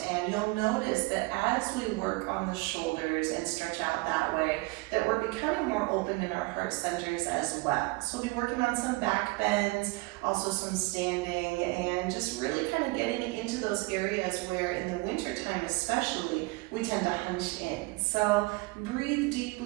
And you'll notice that as we work on the shoulders and stretch out that way, that we're becoming more open in our heart centers as well. So we'll be working on some back bends, also some standing, and just really kind of getting into those areas where in the winter time especially, we tend to hunch in. So breathe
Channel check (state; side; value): quieter; left; 24.1 dB